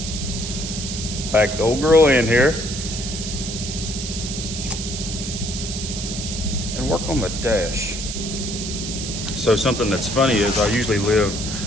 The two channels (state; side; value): noise; right; hiss, 6 dB below the sound